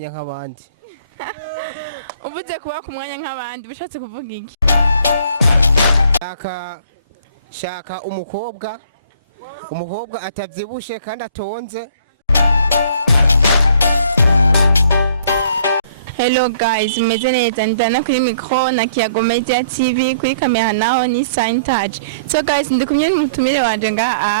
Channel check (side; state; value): both; inverted; correlation -0.58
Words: nk'abandi. Uvuze kuba ku mwanya nk'abandi bishatse kuvuga iki? Shaka umukobwa atavyibushe kandi atonze. Hello guys, meze neza ndana kuri micro na Kiyago Media TV, kuri kamera naho ni Sign Touch. So guys, ndi kumwe n'umutumire wanje